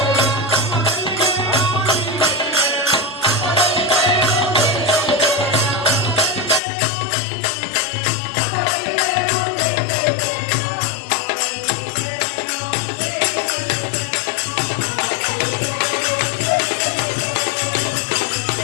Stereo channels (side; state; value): right; drops out; at 6.6 s